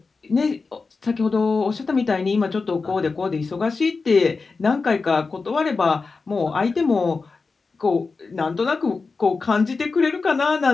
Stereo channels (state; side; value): quieter; right; 4.3 dB